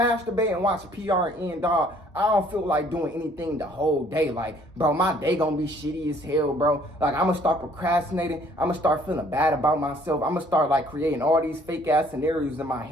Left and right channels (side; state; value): both; normal; correlation 0.60